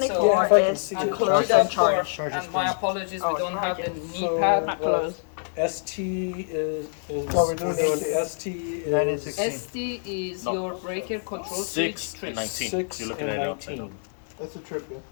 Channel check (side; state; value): right; silent; digital silence